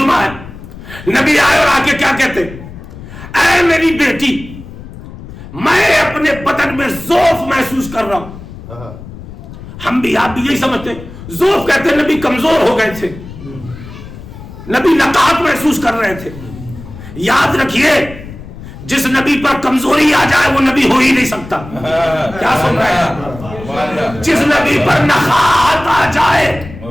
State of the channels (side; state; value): left; noise; rumble, 15 dB below the sound